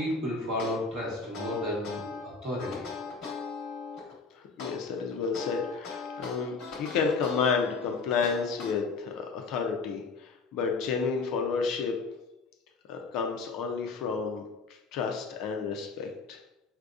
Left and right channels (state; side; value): quieter; right; 4.4 dB